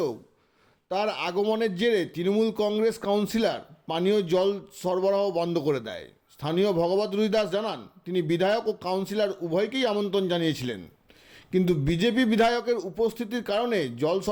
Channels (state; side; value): identical; both; correlation 1.00